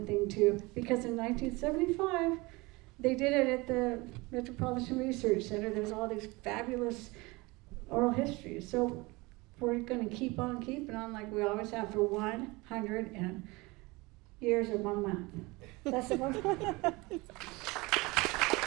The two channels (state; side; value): quieter; left; 23.8 dB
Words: thing too, because in 1975, they did it at the Metropolitan Research Center. There's all these fabulous oral histories. So we're gonna keep on keeping on like we always have for 100 years and 1 month. That's the one.